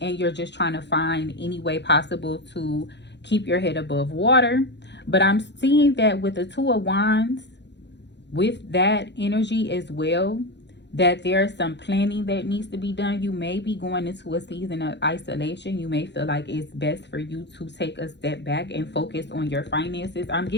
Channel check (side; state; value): right; late; 0.51 ms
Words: and you're just trying to find any way possible to keep your head above water. But I'm seeing that with the 2 of Wands, with that energy as well, that there's some planning that needs to be done. You may be going into a season of isolation. You may feel like it's best for you to take a step back and focus on your finances. I'm